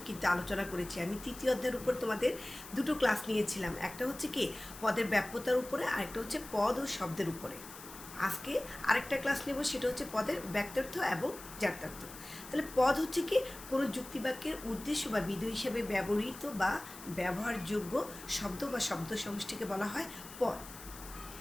কিন্তু আলোচনা করেছি। আমি তৃতীয় অধ্যায়ের উপর তোমাদের দুটো ক্লাস নিয়েছিলাম, একটা হচ্ছে কি পদের ব্যাপ্যতার উপরে, আরেকটা হচ্ছে পদ ও শব্দের উপরে। আজকে আরেকটা ক্লাস নেব, সেটা হচ্ছে পদের ব্যক্তার্থ এবং জাত্যার্থ। তাহলে পদ হচ্ছে কি কোনো যুক্তিবাক্যের উদ্দেশ্য বা বিধেয় হিসেবে ব্যবহৃত বা ব্যবহারযোগ্য শব্দ বা শব্দ সমষ্টিকে বলা হয় পদ।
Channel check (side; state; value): left; noise; hiss, 15 dB below the sound